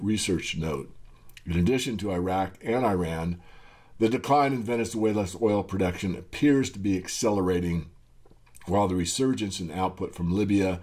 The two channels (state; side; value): identical; both; correlation 1.00